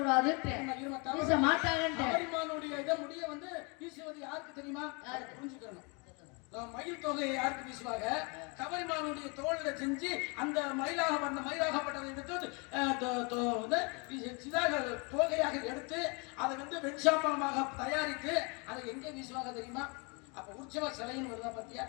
வீச மாட்டாங்கன்னு. கவரிமானுடைய இத முடிய வந்து வீசுவது யாருக்கு தெரியுமா? புரிஞ்சுக்கணும். மயில் தொகையை யாருக்கு வீசுவாங்க? கவரிமானுடைய தோளில செஞ்சு அந்த மயிலாகப்பட்டதை எடுத்து தோகையாக எடுத்து அதை வந்து வெண்சாம்பலமாக தயாரித்து அதை எங்கே வீசுவாங்க தெரியுமா? அப்ப உற்சவ சிலைன்னு வருதா பத்தியா?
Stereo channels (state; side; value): quieter; right; 31.6 dB